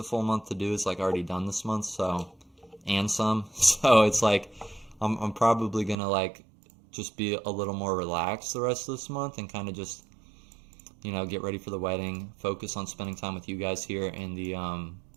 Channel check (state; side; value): drops out; left; at 6.0 s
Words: full month to do is like already done this month, so, and some, so it's like I'm probably gonna like just be a little more relaxed the rest of this month and kind of just, you know, get ready for the wedding, focus on spending time with you guys here in the